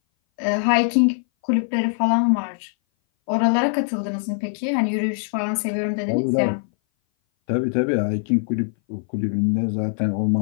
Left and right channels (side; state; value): right; silent; 59 dB below the other